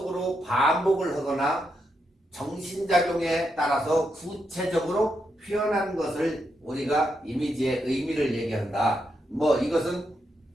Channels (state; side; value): normal; both; correlation 0.82